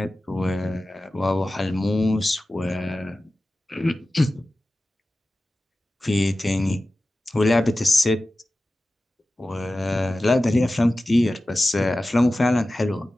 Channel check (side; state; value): both; normal; correlation 0.95